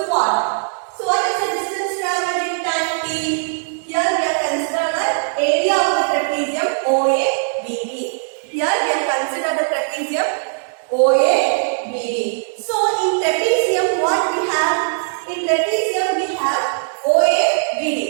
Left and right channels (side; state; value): left; silent; 66 dB below the other